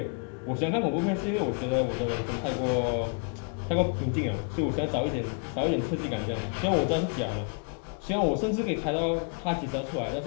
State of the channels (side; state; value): right; quieter; 38.5 dB